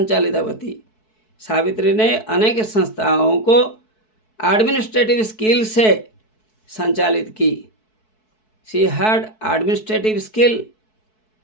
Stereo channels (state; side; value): late; right; 4.6 ms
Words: सावित्री ने अनेक संस्थाओं को एडमिनिस्ट्रेटिव स्किल से संचालित की। शी हैड एडमिनिस्ट्रेटिव स्किल,